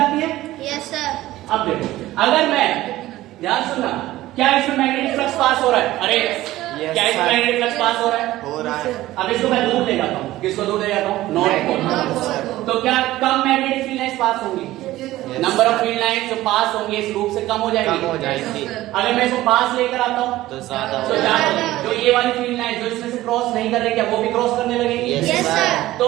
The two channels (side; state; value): left; quieter; 16.1 dB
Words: है? Yes sir. अब देखो, अगर मैं ध्यान सुनना, क्या इसमें मैग्नेटिक फ्लक्स पास हो रहा है? अरे क्या इसमें मैग्नेटिक फ्लक्स पास हो रहा है? हो रहा है। अब इसको मैं दूर ले जाता हूँ। किसको दूर ले जाता हूँ? North pole. तो क्या कम मैग्नेटिक फील्ड लाइंस पास होंगी? नंबर ऑफ फील्ड लाइंस जो पास होंगे इस लूप से कम हो जाएगी। कम हो जाएगी। अगर मैं इसको पास लेकर आता हूँ तो ज्यादा तो ज्यादा। जो ये वाली फील्ड लाइन जो इसमें से क्रॉस नहीं कर रही, क्या वो भी क्रॉस करने लगेगी? Yes sir.